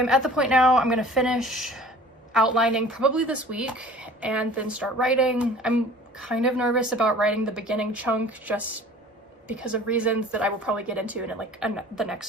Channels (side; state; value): both; normal; correlation 0.47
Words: at the point now, I'm gonna finish outlining probably this week and then start writing. I'm kind of nervous about writing the beginning chunk just because of reasons that I will probably get into in like the